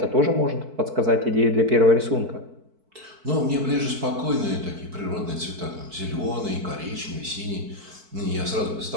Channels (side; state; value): left; late; 4.5 ms